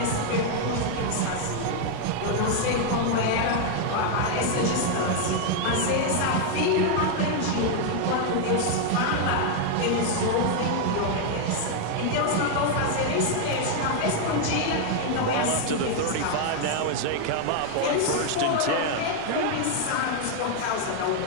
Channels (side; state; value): both; different; correlation 0.00